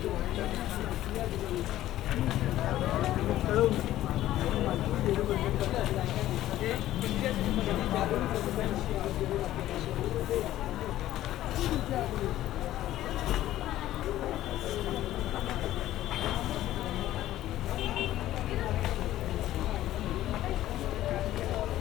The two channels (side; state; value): right; quieter; 14.0 dB